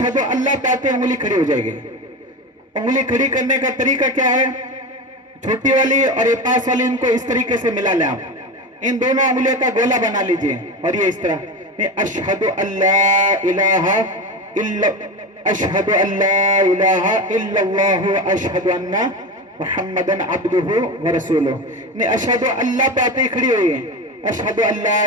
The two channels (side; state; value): both; normal; correlation 0.23